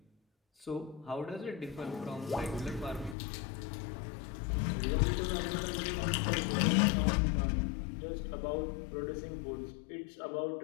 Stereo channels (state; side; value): drops out; right; at 3.2 s